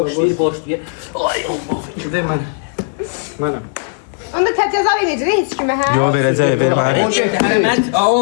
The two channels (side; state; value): right; silent; digital silence